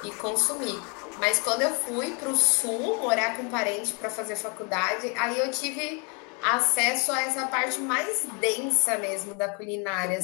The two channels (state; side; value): quieter; right; 34.6 dB